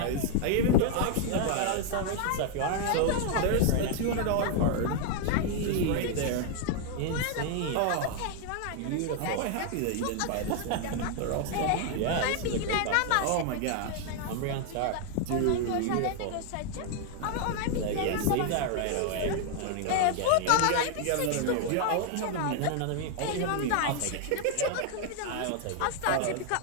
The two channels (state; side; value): different; both; correlation 0.00